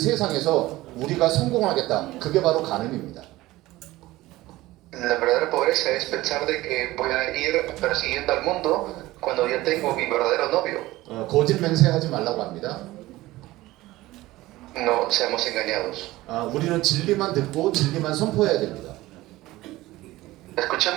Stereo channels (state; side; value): quieter; left; 17.8 dB